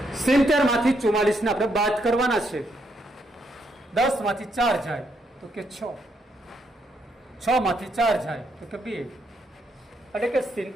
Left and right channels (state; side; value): normal; both; correlation 0.76